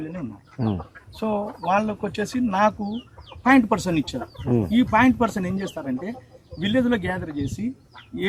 ఉన్నాయి. సో వాళ్ళకి వచ్చేసి నాకు 0.% ఇచ్చారు. ఈ 0.% ఏం చేస్తారంటే విలేజ్ లో గ్యాదర్ చేసి ఏ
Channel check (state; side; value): identical; both; correlation 1.00